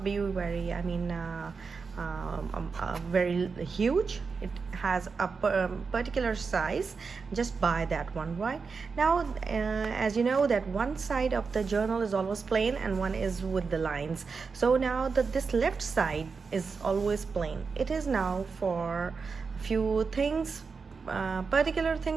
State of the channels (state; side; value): quieter; left; 5.0 dB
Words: be very very huge. It has a particular size. Just buy that one. Right now, as you know, that one side of the journal is always plain and one is with the lines. So now this left side is always plain. It is now for few things, particular